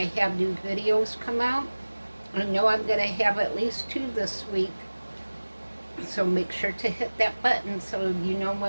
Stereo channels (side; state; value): both; inverted; correlation -1.00